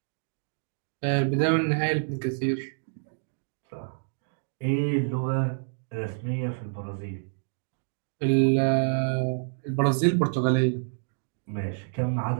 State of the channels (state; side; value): silent; left; digital silence